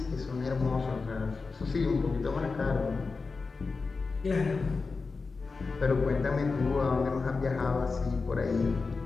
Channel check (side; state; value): right; quieter; 4.3 dB